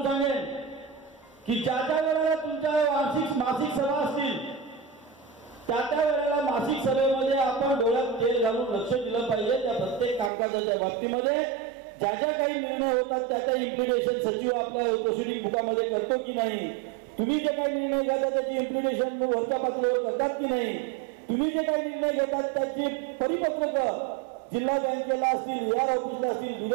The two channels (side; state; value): left; drops out; at 10.3 s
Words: सांगेन की ज्या वेळेला तुमच्या मासिक सभा असतील त्या वेळेला मासिक सभेमध्ये आपण डोळ्यात तेल घालून लक्ष दिलं पाहिजे. त्या प्रत्येक कामकाजाच्या बाबतीमध्ये ज्या काही निर्णय होतात त्याचा इम्प्लिमेंटेशन सचिव आपल्या प्रोसिडिंग बुकामध्ये करतो की नाही, तुम्ही जे काही निर्णय घेता त्याची इम्प्लिमेंटेशन वरच्या पातळीवर करतात की नाही, तुम्ही जे काही निर्णय घेतात त्याची परिपत्रक जिल्हा बँकेला असतील, AR ऑफिसला असतील,